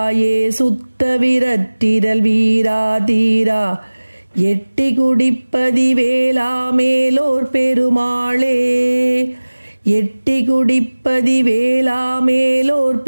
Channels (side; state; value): both; inverted; correlation -1.00